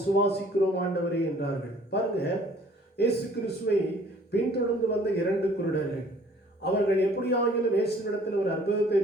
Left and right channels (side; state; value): both; normal; correlation 0.55